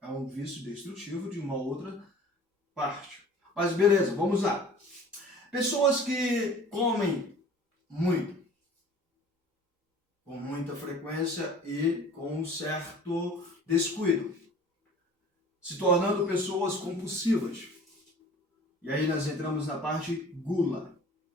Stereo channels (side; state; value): both; normal; correlation 0.46